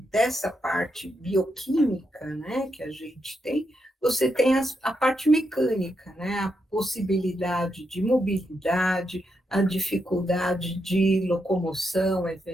dessa parte bioquímica, né, que a gente tem, você tem a parte mecânica, né, a possibilidade de mobilidade, a dificuldade de locomoção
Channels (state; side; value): normal; both; correlation 0.82